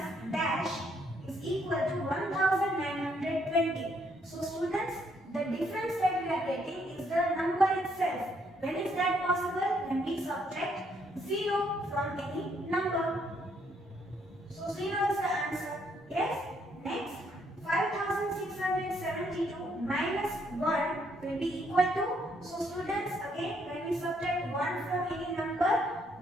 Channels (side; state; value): both; normal; correlation 0.71